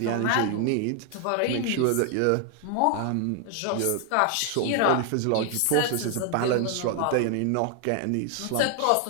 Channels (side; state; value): both; different; correlation 0.00